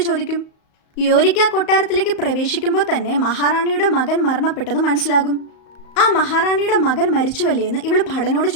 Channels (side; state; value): right; late; 35 ms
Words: ചോദിക്കും. യോരിക്ക് ആ കൊട്ടാരത്തിലേക്ക് പ്രവേശിക്കുമ്പോൾ തന്നെ മഹാറാണിയുടെ മകൻ മരണപ്പെട്ടത് മനസ്സിലാകും. ആ മഹാറാണിയുടെ മകൻ മരിച്ചുവല്ലേ എന്ന് ഇവൾ ഭടനോട്